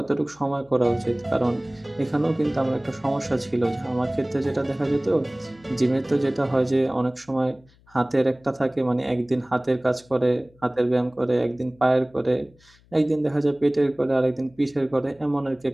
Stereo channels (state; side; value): noise; left; hum, 30 dB below the sound